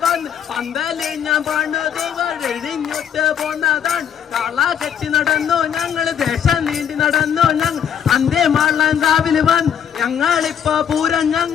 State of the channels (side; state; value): right; quieter; 8.6 dB